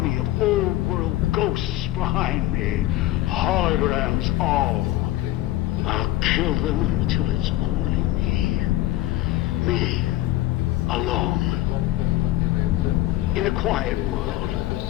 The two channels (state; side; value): quieter; right; 15.7 dB